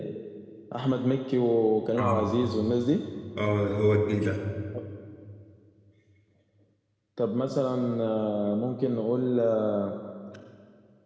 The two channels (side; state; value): both; identical; correlation 1.00